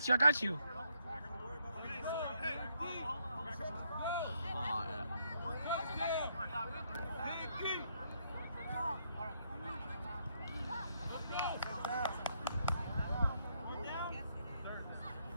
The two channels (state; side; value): inverted; both; correlation -0.75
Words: you, I got you.